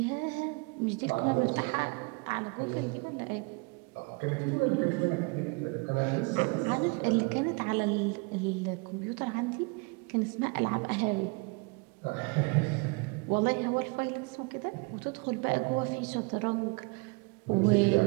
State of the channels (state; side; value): quieter; left; 30.1 dB